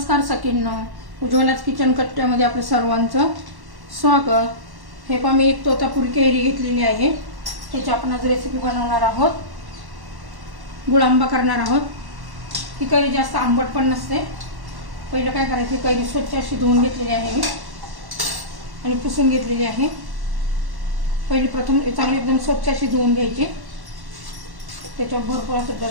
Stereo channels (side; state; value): left; late; 1.1 ms